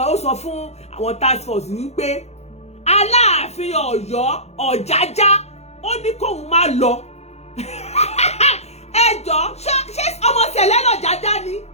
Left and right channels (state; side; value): late; right; 0.31 ms